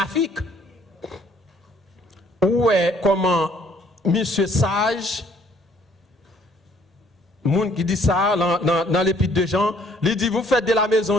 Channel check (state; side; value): normal; both; correlation 0.62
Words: Où est comment monsieur Sage, monde qui dit ça dans l'épître de Jean, il dit, vous faites de la